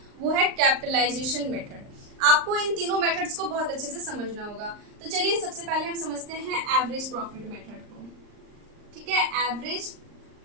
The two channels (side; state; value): left; late; 39 ms